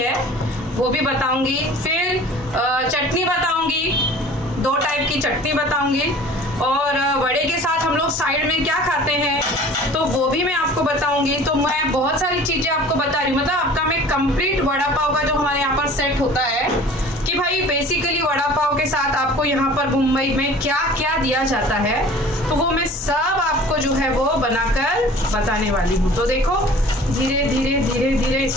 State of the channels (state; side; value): normal; both; correlation 0.45